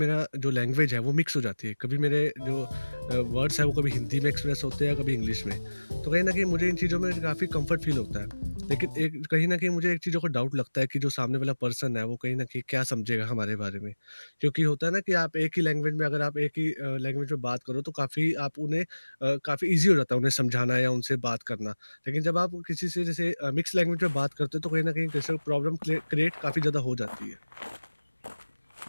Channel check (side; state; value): both; inverted; correlation -1.00